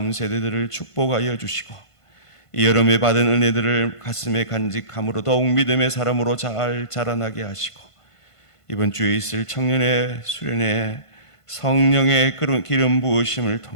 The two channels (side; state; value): right; late; 1.5 ms